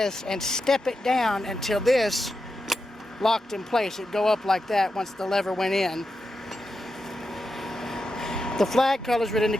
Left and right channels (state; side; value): normal; both; correlation 0.88